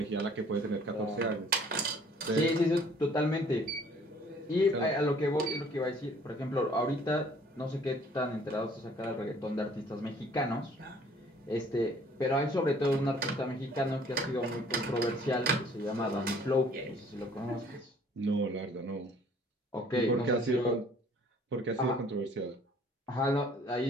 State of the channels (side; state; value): both; normal; correlation 0.56